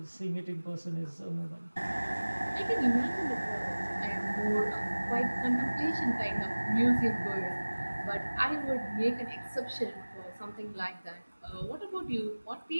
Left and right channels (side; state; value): both; inverted; correlation -1.00